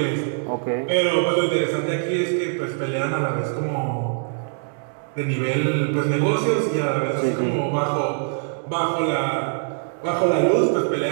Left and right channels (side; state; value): left; silent; digital silence